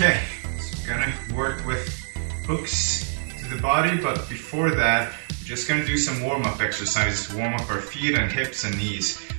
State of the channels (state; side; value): silent; left; digital silence